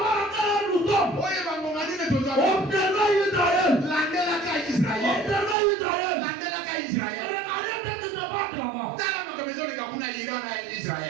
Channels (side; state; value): left; drops out; at 5.6 s